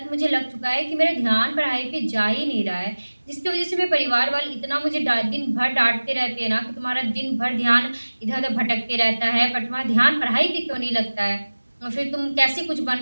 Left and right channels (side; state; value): both; inverted; correlation -1.00